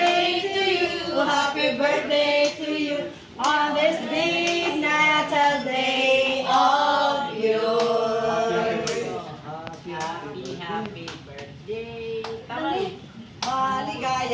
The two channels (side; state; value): both; identical; correlation 1.00